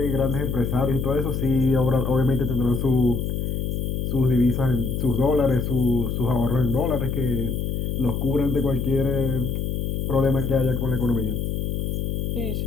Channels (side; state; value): left; noise; hum, 1 dB below the sound